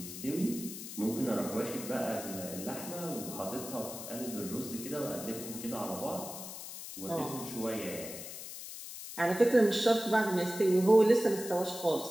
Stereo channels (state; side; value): noise; left; hiss, 10 dB below the sound